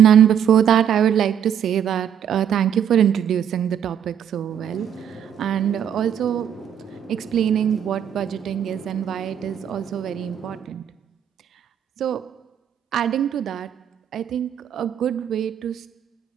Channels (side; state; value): left; quieter; 8.9 dB